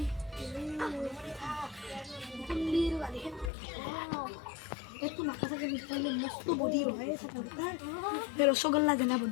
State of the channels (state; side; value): drops out; right; at 3.5 s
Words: কুল্লির গালি একটু নাকা থাকে নিশ্চয় মস্ত বডি হয় সকালটা রসগোল্লা দেনা